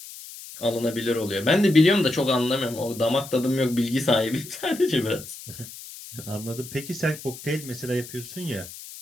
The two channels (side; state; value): left; noise; hiss, 14 dB below the sound